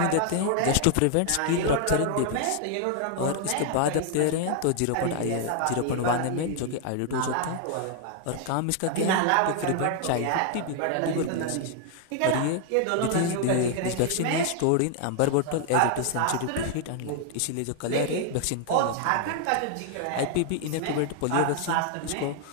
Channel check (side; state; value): both; different; correlation 0.00